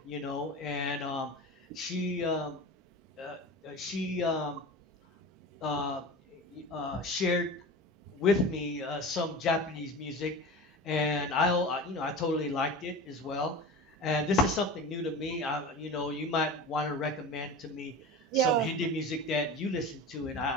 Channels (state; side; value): normal; both; correlation 0.32